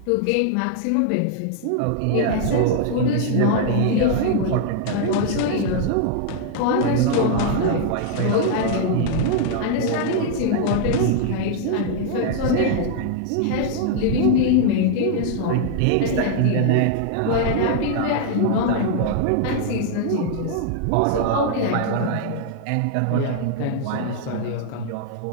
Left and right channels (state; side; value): different; both; correlation 0.00